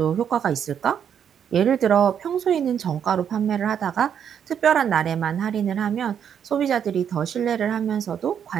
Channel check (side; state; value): left; quieter; 8.4 dB